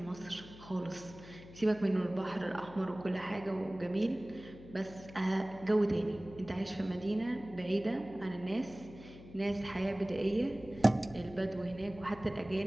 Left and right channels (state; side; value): noise; left; hum, 17 dB below the sound